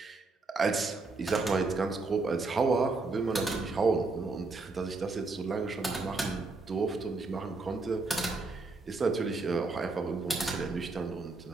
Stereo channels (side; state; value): left; quieter; 3.7 dB